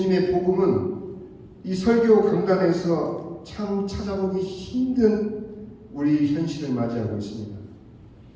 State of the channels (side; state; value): both; identical; correlation 1.00